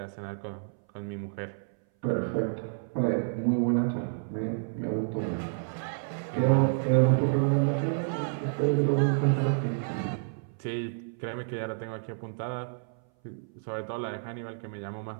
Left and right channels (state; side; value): silent; left; 58 dB below the other